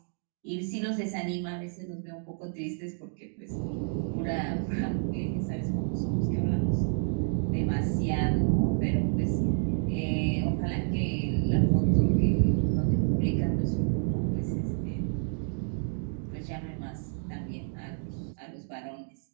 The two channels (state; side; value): silent; left; digital silence